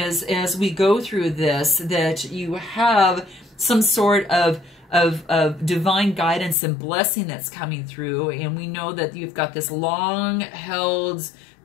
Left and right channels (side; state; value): right; drops out; at 6.6 s